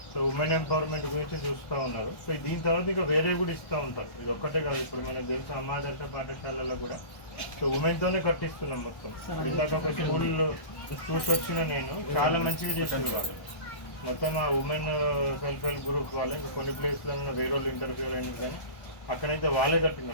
సో ఉమెన్ ఎంపవర్మెంట్ గురించి చూస్తూ ఉన్నారు. సో దీని తర్వాత ఇంకా వేరే కూడా ఇస్తూ ఉంటారు. ఇది ఒక్కటే కాదు, ఇప్పుడు మనకు తెలుసు అమ్మాదర్శ పాఠశాలలో కూడా సో ఉమెన్తోనే కట్టిస్తున్నాం మొత్తం. ఇందాక ఒక స్కూల్ చూసి వచ్చిన నేను చాలా మంచిగా చేస్తున్నారు. మొత్తం ఆ ఉమెన్ సెల్ఫ్ హెల్ప్ గ్రూప్ వాళ్ళే. ఇంకా కొన్ని ప్లేస్లలో వేరే వాళ్ళు ఇంటర్ఫియర్ అయినా కానీ అక్కడైతే వాళ్ళే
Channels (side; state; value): right; late; 1.2 ms